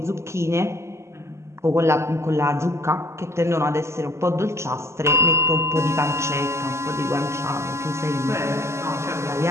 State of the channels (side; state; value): left; late; 0.13 ms